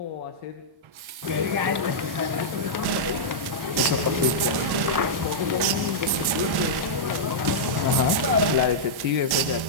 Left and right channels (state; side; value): late; left; 1.1 ms